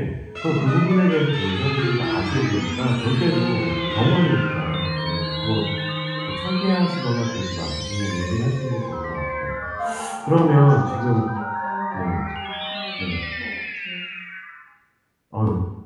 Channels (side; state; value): both; identical; correlation 1.00